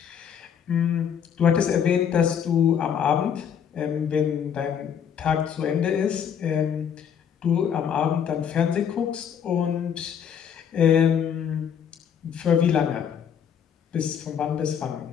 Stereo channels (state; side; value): quieter; right; 8.1 dB